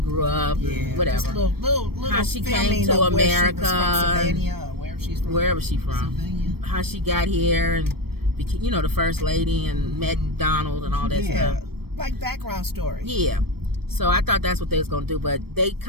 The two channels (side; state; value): left; late; 0.95 ms